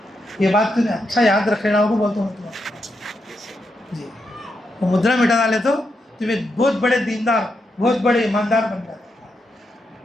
یہ بات تمہیں اچھا یاد رکھ لینا ہوگا بولتا ہوں تمہیں جی. وہ مدرا مٹا ڈالے تو تمہیں بہت بڑے دیندار بہت بڑے ایماندار بن جاتے.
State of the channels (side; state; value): both; normal; correlation 0.83